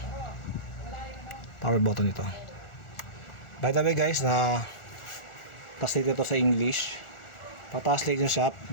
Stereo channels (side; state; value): right; late; 1.4 ms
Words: power button ito. By the way guys, translate ito sa English. Pa-translate nyo siya,